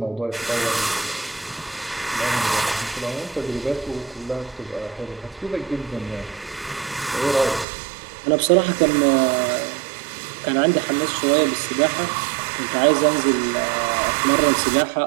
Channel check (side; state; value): left; drops out; at 7.7 s